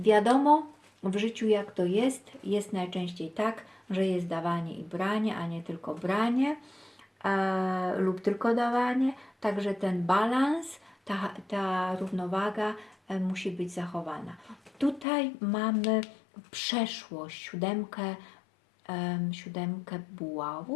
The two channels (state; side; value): drops out; right; at 15.1 s